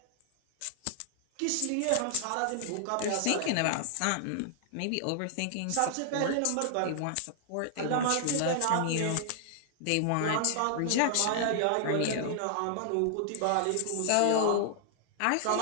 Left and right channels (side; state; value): both; different; correlation -0.01